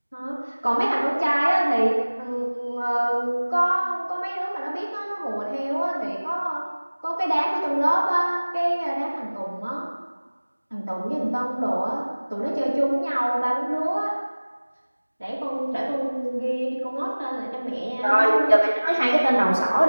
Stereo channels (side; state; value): both; inverted; correlation -1.00